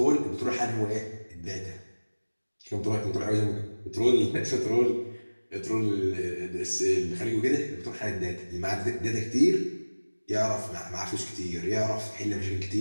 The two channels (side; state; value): both; inverted; correlation -1.00